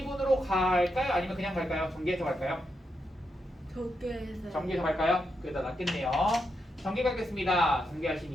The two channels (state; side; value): normal; both; correlation 0.83